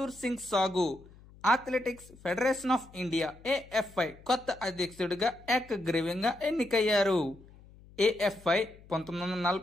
సింగ్ సాగు athletics federation of India AFI కొత్త అధ్యక్షుడిగా ఏకగ్రీవంగా ఎన్నికయ్యారు. AFI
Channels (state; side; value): noise; left; hum, 23 dB below the sound